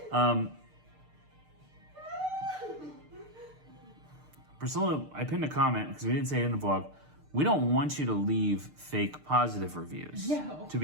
Priscilla, I pinned a comment because we didn't say it in the vlog. We don't want you to leave fake positive reviews. No. To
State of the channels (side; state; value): left; late; 6.6 ms